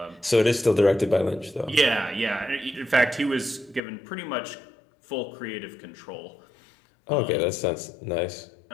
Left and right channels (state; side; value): drops out; right; at 3.8 s